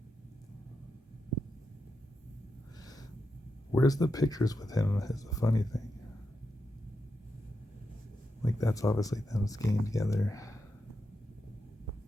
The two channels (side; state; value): both; normal; correlation 0.86